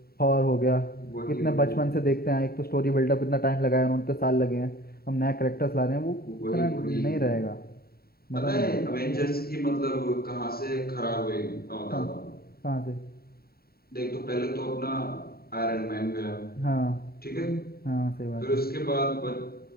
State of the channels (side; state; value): right; late; 0.45 ms